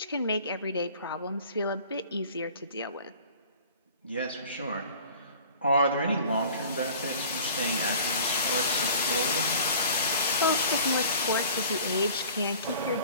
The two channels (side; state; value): both; inverted; correlation -0.46